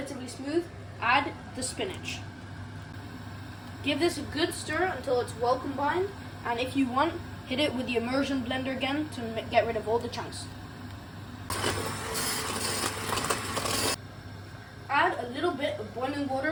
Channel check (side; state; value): both; identical; correlation 1.00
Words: smooth, add the spinach. Give this a good stir until it's well combined, and if you want, hit it with the immersion blender again to get rid of all the chunks. Add a little bit of boiling